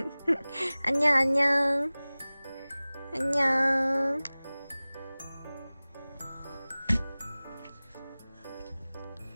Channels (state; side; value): inverted; both; correlation -0.99